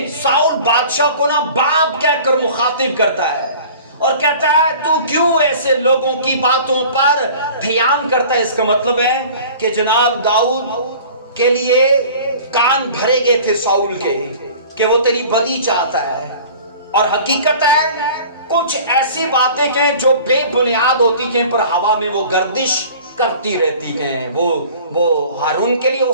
साउल बादशाह को ना बाप कहकर मुखातिब करता है और कहता है, तू क्यों ऐसे लोगों की बातों पर ध्यान करता है। इसका मतलब है कि जनाब दाऊद के लिए कान भरे गए थे साउल के कि वो तेरी बदी चाहता है। और हकीकत है कुछ ऐसी बातें हैं जो बेबुनियाद होती हैं पर हवा में वो गर्दिश करती रहती हैं। वो हारून के लिए हो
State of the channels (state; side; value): inverted; both; correlation -0.45